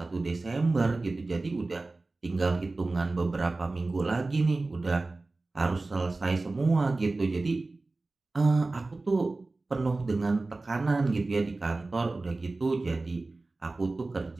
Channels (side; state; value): left; quieter; 3.3 dB